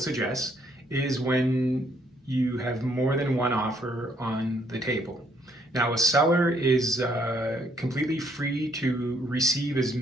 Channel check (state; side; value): normal; both; correlation 0.68